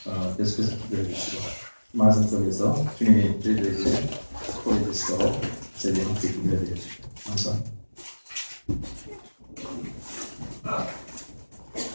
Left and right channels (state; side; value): inverted; both; correlation -1.00